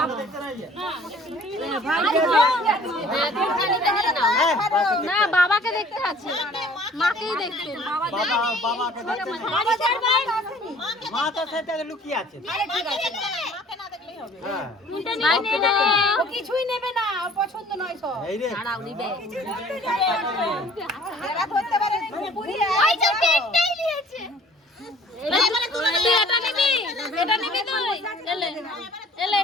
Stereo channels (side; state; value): both; normal; correlation 0.52